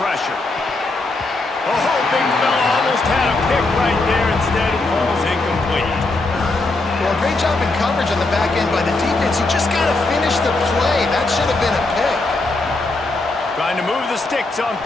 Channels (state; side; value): quieter; right; 3.1 dB